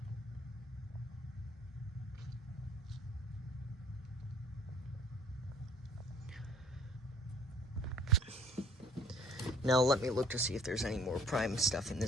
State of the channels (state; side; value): normal; both; correlation 0.55